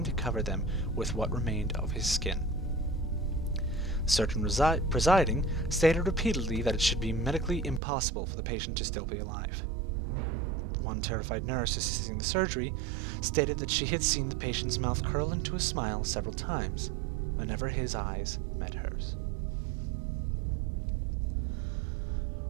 to cover them with what remained of his skin. The surgeon presiding stated repeatedly that it should be medically impossible for the patient to still be alive. One terrified nurse assisting the surgery stated that she had seen the patient's mouth curl into a smile several times whenever his eyes met hers.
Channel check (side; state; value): left; drops out; at 7.8 s